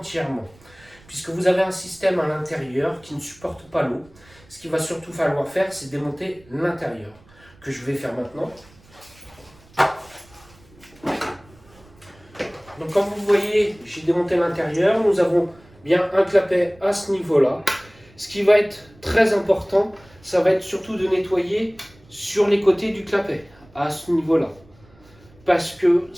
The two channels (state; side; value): noise; right; rumble, 27 dB below the sound